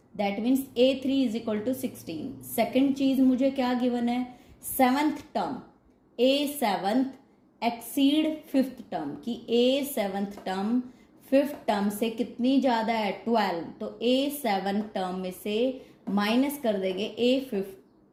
that means A3 is equal to 16। Second चीज मुझे क्या गिवन है, 7th term, A7 exceed 5th term की A7 टर्म 5th टर्म से कितनी ज्यादा है, 12। तो A7 टर्म में से माइनस कर देंगे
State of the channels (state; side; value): identical; both; correlation 1.00